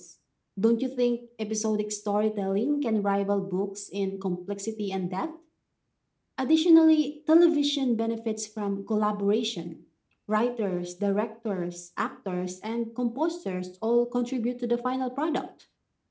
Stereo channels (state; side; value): identical; both; correlation 1.00